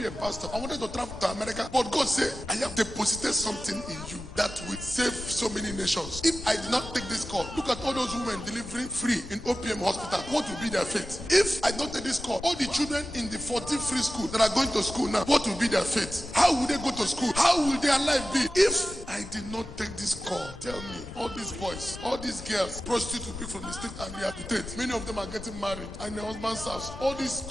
a pastor. I wanted to travel to America, but God said, I have deposited something in you that will save so many nations. If I did not take this call, look at all those women delivering free in OPM hospital. What will be their fate? If I don't take this call, all the children in the 14 free school that are going to school now, what will be their fate? How will they go to school? How will their life be? If I did not take this call, tell me, all these boys, all these girls, prostitute people from the state and rehabilitate. Many of them are getting married and their husband's house. All these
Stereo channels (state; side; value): normal; both; correlation 0.94